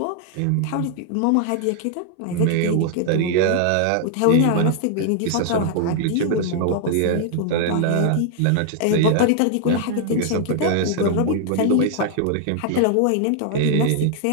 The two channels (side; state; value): both; different; correlation 0.00